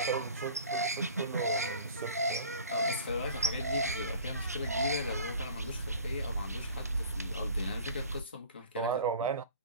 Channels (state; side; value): inverted; both; correlation -0.45